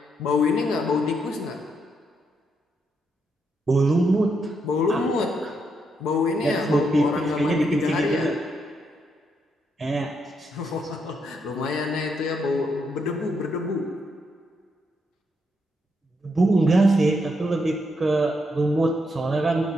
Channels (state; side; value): normal; both; correlation 0.79